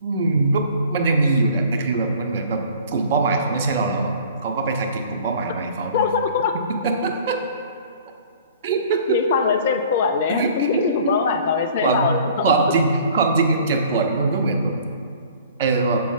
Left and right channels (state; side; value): inverted; both; correlation -0.49